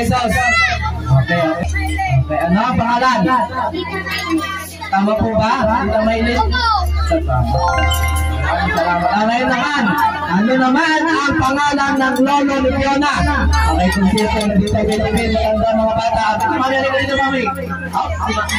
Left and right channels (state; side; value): identical; both; correlation 1.00